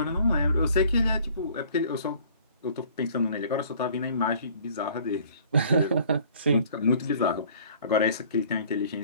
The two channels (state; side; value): inverted; both; correlation -0.53